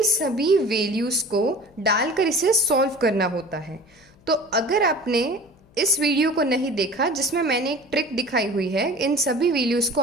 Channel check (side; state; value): left; noise; hum, 29 dB below the sound